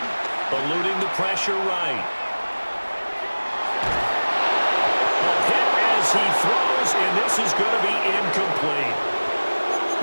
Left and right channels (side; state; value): both; inverted; correlation -1.00